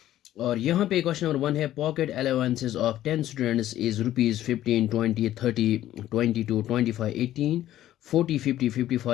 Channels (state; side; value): quieter; right; 13.2 dB